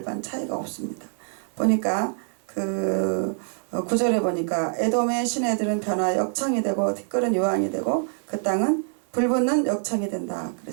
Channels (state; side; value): silent; left; 62 dB below the other